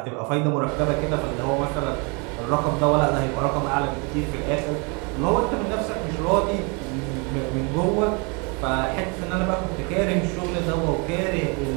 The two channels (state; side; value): quieter; left; 32.2 dB